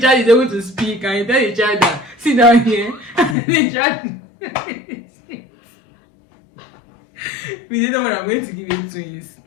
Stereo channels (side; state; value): right; drops out; at 3.4 s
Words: child is able to speak and you tell the child that sit down here and the child we didn't know when I'm going to give you twins